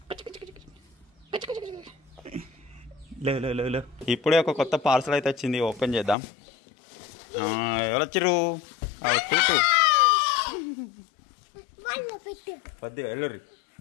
లేవు. ఇప్పుడే ఒక కొత్త పార్సల్ అయితే వచ్చింది, ఓపెన్ చేద్దాం. ఎవరు వచ్చిర్రు? వద్దు వెళ్ళుర్రి,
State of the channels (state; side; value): drops out; right; at 6.2 s